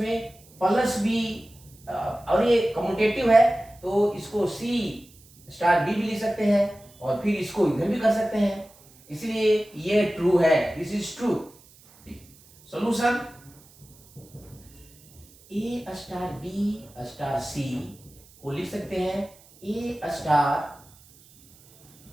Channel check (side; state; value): right; noise; hiss, 26 dB below the sound